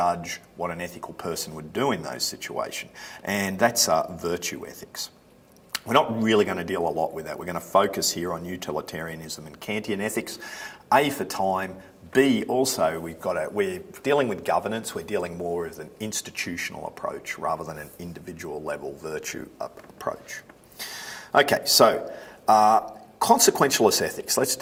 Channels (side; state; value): both; identical; correlation 1.00